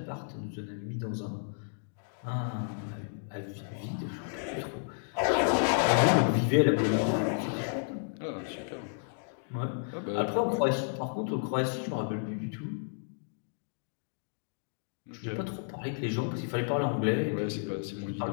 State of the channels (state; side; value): silent; right; digital silence